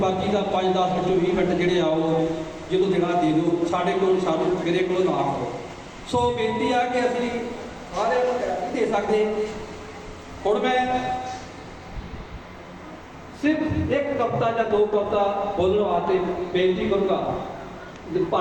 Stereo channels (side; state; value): both; identical; correlation 1.00